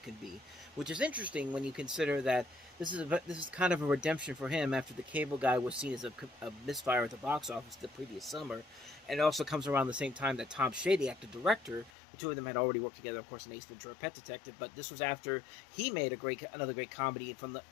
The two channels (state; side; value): drops out; right; at 11.9 s